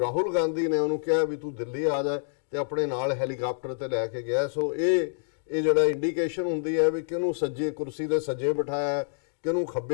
ਗਾਂਧੀ ਨੇ ਉਹਨੂੰ ਕਿਹਾ ਵੀ ਤੂੰ ਦਿੱਲੀ ਆ ਜਾ ਤੇ ਆਪਣੇ ਨਾਲ ਹੈਲੀਕਾਪਟਰ ਤੇ ਲੈ ਕੇ ਗਿਆ। ਸੋ ਇਹ ਜਿਹੜਾ ਇੰਡੀਕੇਸ਼ਨ ਹੁੰਦੀ ਹੈ ਵੀ ਕਿਹਨੂੰ ਸੱਜੇ ਕੁਰਸੀ ਦੇ ਸੱਜੇ ਬਿਠਾਇਆ, ਕਿਹਨੂੰ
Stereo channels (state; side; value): silent; right; digital silence